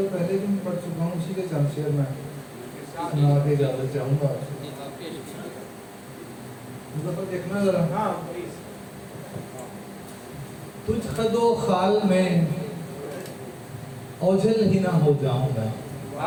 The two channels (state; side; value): identical; both; correlation 1.00